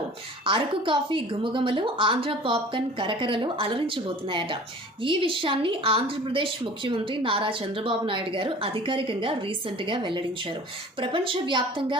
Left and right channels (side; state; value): both; normal; correlation 0.44